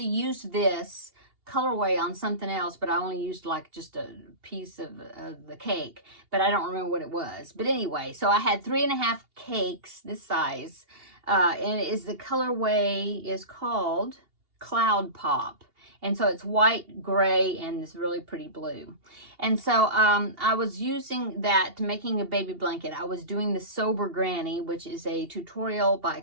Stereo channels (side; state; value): left; late; 2.8 ms